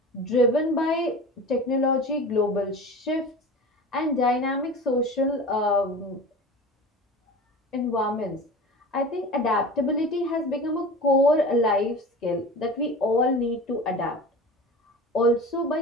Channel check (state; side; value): normal; both; correlation 0.35